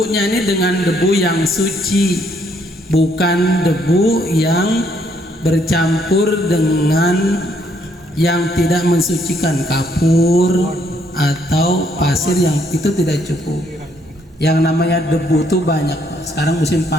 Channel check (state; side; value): normal; both; correlation 0.69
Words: ini dengan debu yang suci, bukan debu yang bercampur dengan yang tidak mensucikan, kapur atau pasir, yang itu tidak cukup. Yang namanya debu tuh banyak. Sekarang musim